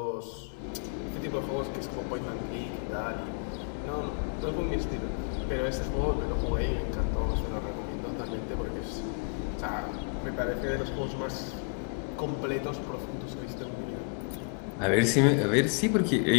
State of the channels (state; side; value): quieter; right; 37.1 dB